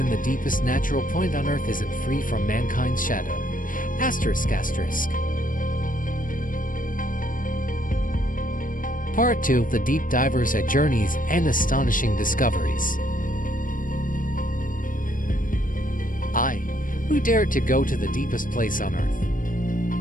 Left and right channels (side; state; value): right; late; 0.40 ms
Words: the deepest natural point on Earth isn't free from mankind's shadow. ***. Part 2 of The Deep Divers at Journeys and Astonishing Discoveries. I, who dared to go to the deepest place on Earth.